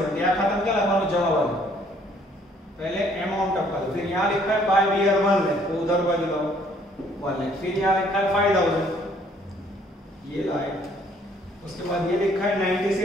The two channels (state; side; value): normal; both; correlation 0.62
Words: यहां खत्म क्या लगाओ जमा वाला, पहले अमाउंट ऑफ कर, फिर यहां लिखा है बाय बियर 1 लाख तो उधर बाजू लाओ 1 लाख, फिर यहां लिखा है 5,000 ये लाए, उसके बाद ये लिखा है